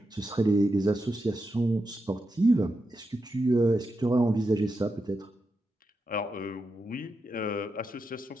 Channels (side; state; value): both; normal; correlation 0.87